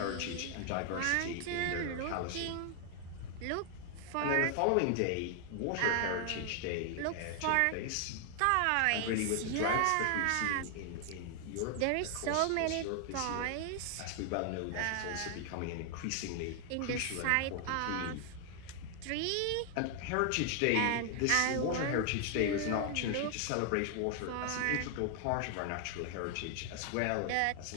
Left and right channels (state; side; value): different; both; correlation 0.00